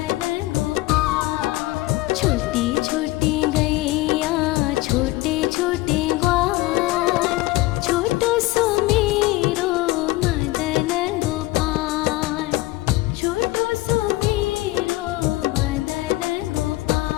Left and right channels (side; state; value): right; quieter; 19.3 dB